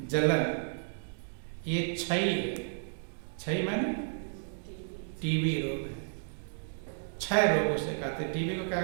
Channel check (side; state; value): left; silent; digital silence